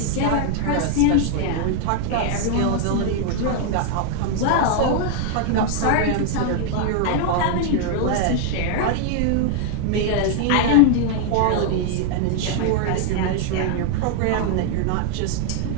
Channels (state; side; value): different; both; correlation 0.00